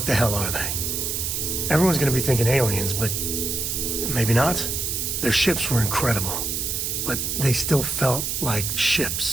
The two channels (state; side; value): noise; right; hiss, 1 dB below the sound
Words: the hell are they? Everyone's gonna be thinking aliens, but maybe not. Their ships were incredible, but they still felt like